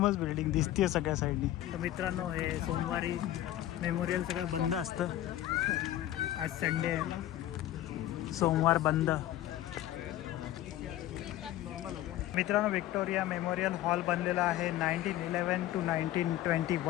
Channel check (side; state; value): right; quieter; 13.6 dB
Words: बिल्डिंग दिसते सगळ्या साईडनी. तर मित्रांनो हे सोमवारी मेमोरियल सगळं बंद असतं. आज संडे आहे, सोमवार बंद. मित्रांनो विक्टोरिया मेमोरियल हॉल बनलेला आहे 1911 to